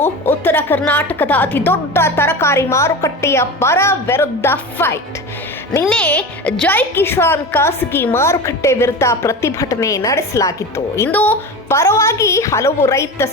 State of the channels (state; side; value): normal; both; correlation 0.29